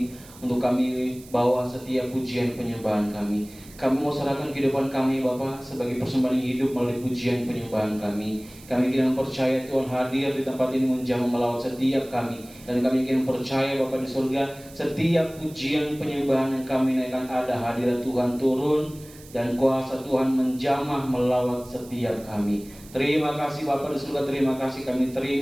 untuk kami bawa setiap pujian penyembahan kami. Kami mau serahkan kehidupan kami Bapa sebagai persembahan hidup melalui pujian penyembahan kami. Kami ingin percaya Tuhan hadir di tempat ini menjamah melawat setiap kami. Dan kami ingin percaya Bapa di surga, setiap pujian penyembahan yang kami naikkan ada hadirat Tuhan turun dan kuasa Tuhan menjamah melawat setiap kami. Terima kasih Bapa di surga, terima kasih kami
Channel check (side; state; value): right; noise; hiss, 21 dB below the sound